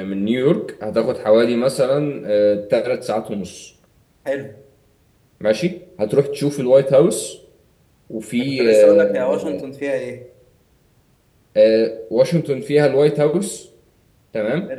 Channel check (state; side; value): identical; both; correlation 1.00